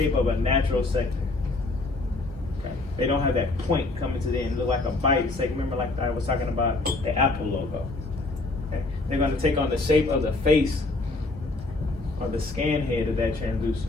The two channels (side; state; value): right; quieter; 3.1 dB